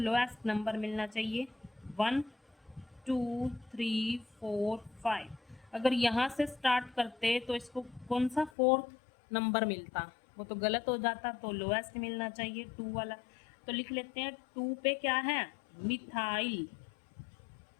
नंबर मिलना चाहिए 1 2 3 4 5। अगर यहाँ से स्टार्ट करते तो इसको कौन सा फोर्थ नंबर मिलता, वो तो गलत हो जाता, तो लोएस्ट मिलना चाहिए 2 वाला। तो लिख लेते हैं 2 पे क्या है, मिथाइल,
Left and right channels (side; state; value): right; drops out; at 8.5 s